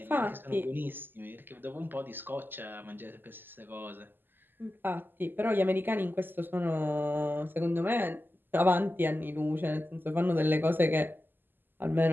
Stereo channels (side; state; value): left; late; 0.094 ms